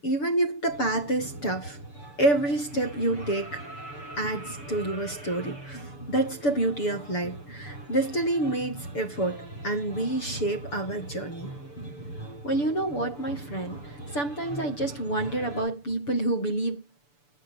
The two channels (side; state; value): right; late; 6.9 ms